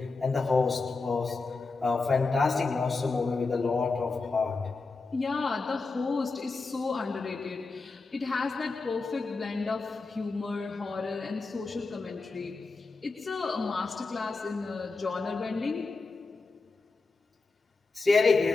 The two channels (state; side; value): quieter; right; 3.9 dB